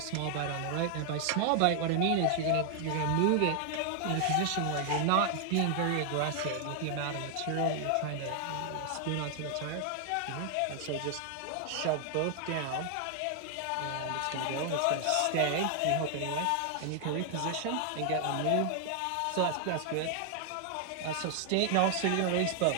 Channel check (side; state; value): both; different; correlation 0.00